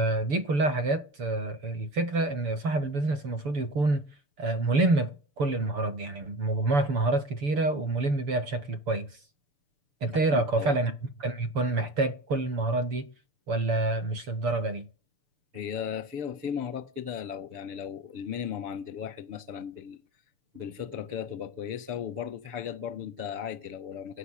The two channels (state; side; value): late; left; 6.9 ms